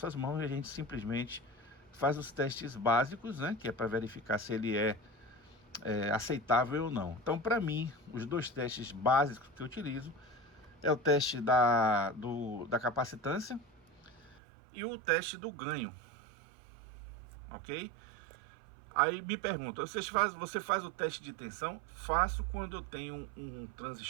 mãos e a gente simplesmente faz os testes básicos, né, que é para verificar se ele é aceitável ou não. Então, para mim, os dois testes básicos que eu utilizo é o teste da capacitância e o teste do ganho, ok? Aí me pergunta, você faz o teste de tensão? Faço quando eu tenho um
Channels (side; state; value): left; drops out; at 14.4 s